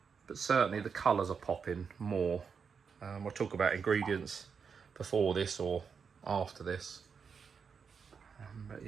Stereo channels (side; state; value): left; quieter; 6.1 dB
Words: certainly the colours are popping more. We'll talk about ingredients before this or after this. But